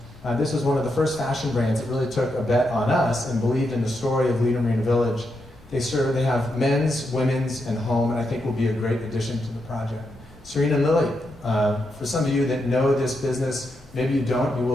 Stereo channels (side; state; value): right; noise; rumble, 26 dB below the sound